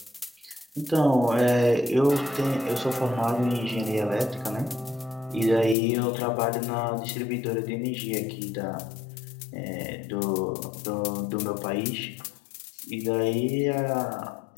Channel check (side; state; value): right; drops out; at 5.8 s